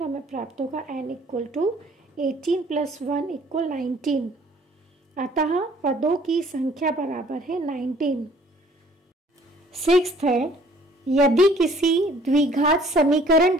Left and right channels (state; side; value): normal; both; correlation 0.57